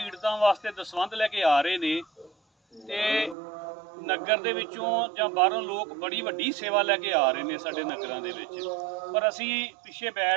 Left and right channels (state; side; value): drops out; left; at 3.4 s